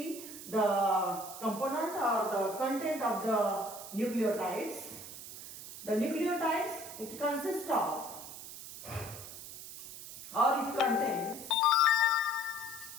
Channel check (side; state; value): right; noise; hiss, 12 dB below the sound